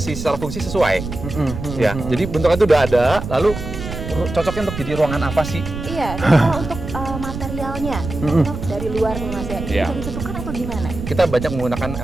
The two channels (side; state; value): right; noise; rumble, 8 dB below the sound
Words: fungsi sesuai. Ya, jadi bentuknya itu udah ada, lalu cocoknya untuk jadi ruangan apa sih? Iya, kalau untuk materialnya dari luar nih Mas ya, Iya. bisa ditentukan atau gimana? Kita banyak menggunakan